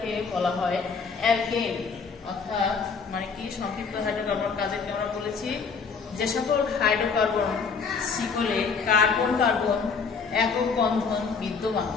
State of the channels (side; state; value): right; quieter; 5.4 dB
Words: বলা হয় অ্যালকেন। অর্থাৎ মানে কি, সম্পৃক্ত হাইড্রোকার্বন কাদেরকে আমরা বলেছি? যে সকল হাইড্রোকার্বন শিকলে কার্বন কার্বন একক বন্ধন বিদ্যমান,